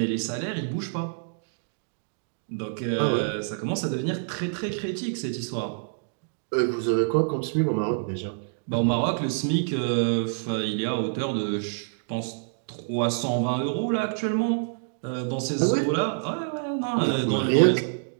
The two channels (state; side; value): silent; left; digital silence